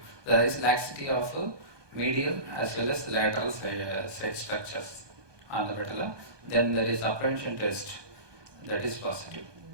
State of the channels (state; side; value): late; left; 1.2 ms